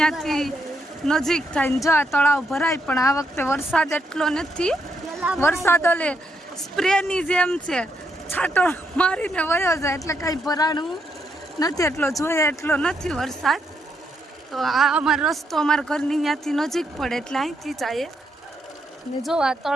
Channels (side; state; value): both; normal; correlation 0.78